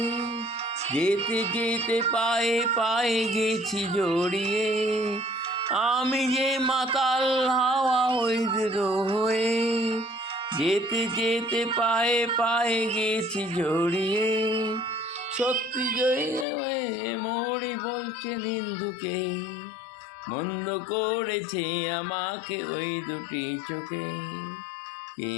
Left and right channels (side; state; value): right; drops out; at 16.4 s